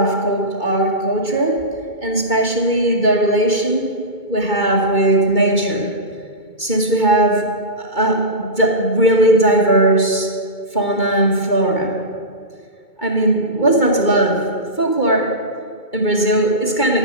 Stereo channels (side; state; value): right; late; 2.2 ms